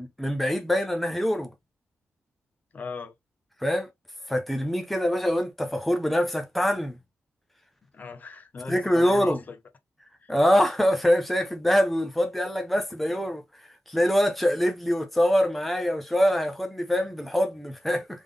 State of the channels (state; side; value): normal; both; correlation 0.95